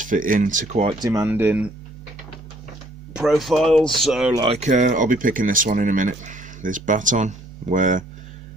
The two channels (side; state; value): both; normal; correlation 0.62